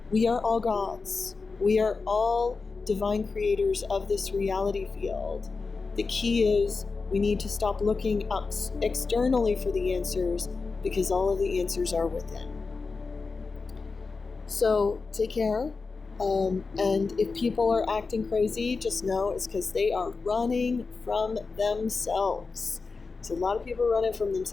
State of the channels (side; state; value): right; quieter; 4.4 dB